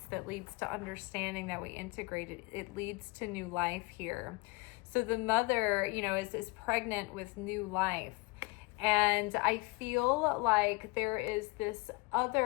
that leads to understanding that we integrate it. It leads to new life here. So the mother, is pregnant with new life. And I feel like there is this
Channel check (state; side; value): quieter; right; 26.2 dB